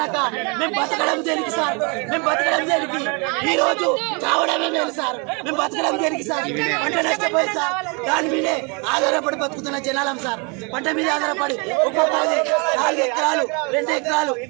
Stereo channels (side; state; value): left; quieter; 32.4 dB